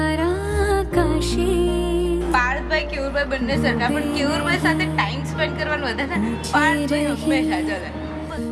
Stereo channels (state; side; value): identical; both; correlation 1.00